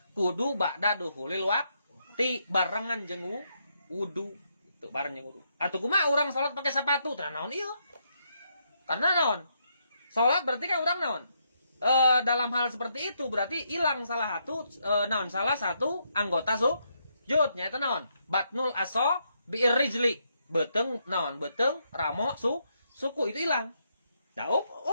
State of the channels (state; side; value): inverted; both; correlation -0.77